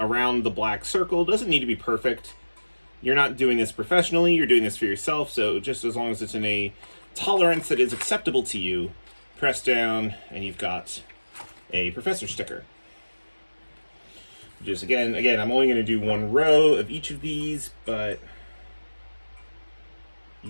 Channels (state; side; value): inverted; both; correlation -1.00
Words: the black circle. Doesn't need to be perfect. You're not doing this professionally, you're doing this for yourself, so just as long as it's in a tolerance that is acceptable to you, press down, and you've got a professor sticker. Just again, I'm only going to do one row of each of these, but